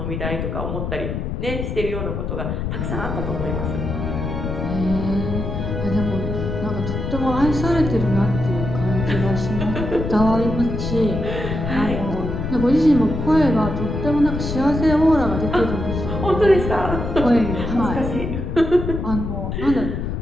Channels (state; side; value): noise; left; rumble, 4 dB below the sound